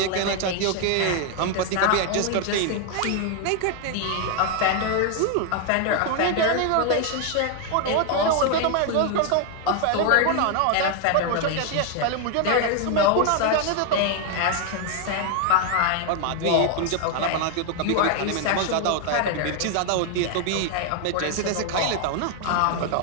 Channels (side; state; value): both; different; correlation 0.00